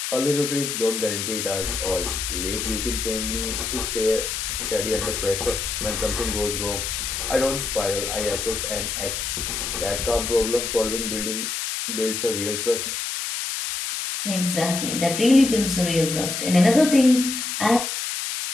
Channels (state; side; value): noise; left; hiss, 3 dB below the sound